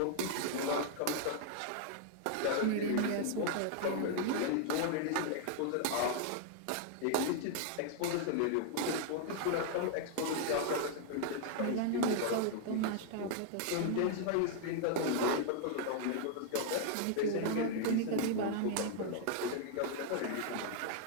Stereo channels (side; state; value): both; different; correlation 0.00